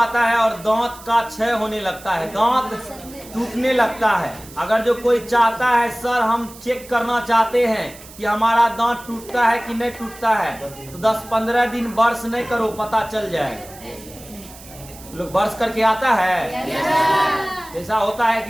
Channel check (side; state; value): right; noise; hiss, 19 dB below the sound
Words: है और दांत का क्षय होने लगता है, दांत टूटने लगता है। अगर जो कोई चाहता है सर हम चेक करना चाहते हैं कि हमारा दांत टूटता है कि नहीं टूटता है, तो 10-15 दिन ब्रश नहीं करो, पता चल जाएगा। लोग ब्रश करके आता है, ऐसा होता है